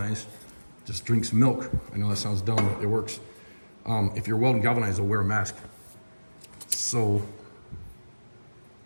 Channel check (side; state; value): both; inverted; correlation -1.00